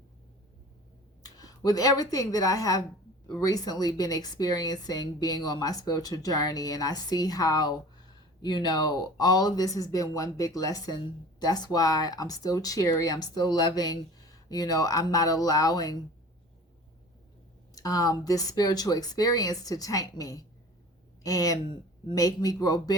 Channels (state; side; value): normal; both; correlation 0.42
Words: with everything that I have recently been experiencing, being on my spiritual journey, and I see how, all of this has been one big lesson. That's why I'm still cheery. I'm still loving. I'm not allowing this spiritual experience to taint me and make me grow